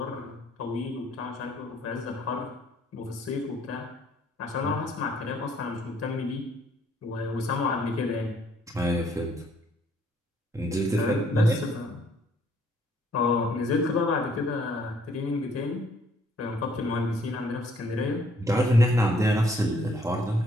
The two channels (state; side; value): normal; both; correlation 0.64